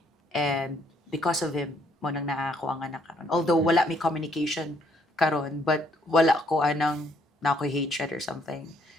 And because of him, mo nang naa ako ang anak karon. Although wala mi communication karon, but wala ko anang na ako'y hatred or something.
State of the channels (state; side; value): normal; both; correlation 0.67